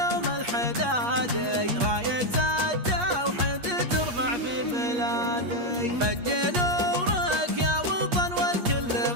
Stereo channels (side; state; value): left; late; 8.4 ms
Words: الحدادي، راية التوحيد ترفع في بلادي. فج نورك يا وطن والكل